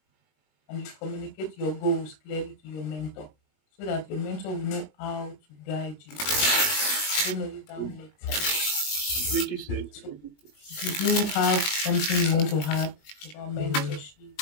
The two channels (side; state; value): right; late; 20 ms